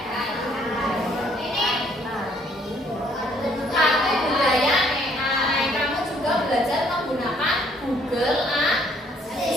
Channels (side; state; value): both; normal; correlation 0.64